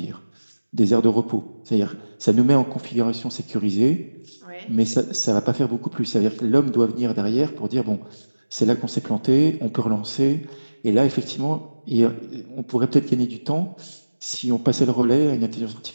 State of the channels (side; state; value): both; inverted; correlation -1.00